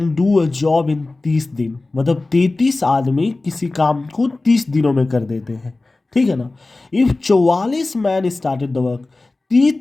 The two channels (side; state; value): right; quieter; 3.2 dB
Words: do a job in 30 दिन, मतलब 33 आदमी किसी काम को 30 दिनों में कर देते हैं, ठीक है ना। If 44 man started the work,